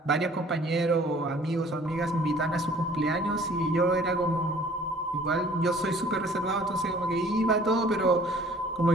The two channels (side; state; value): both; normal; correlation 0.53